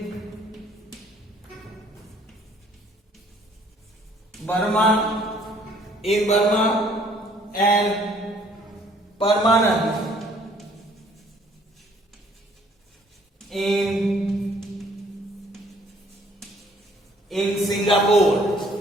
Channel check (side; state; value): both; normal; correlation 0.60